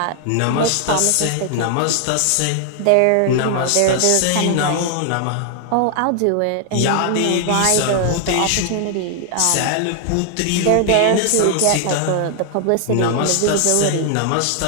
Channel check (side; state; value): both; different; correlation 0.00